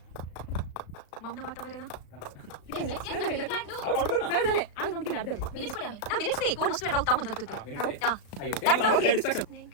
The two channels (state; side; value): late; right; 36 ms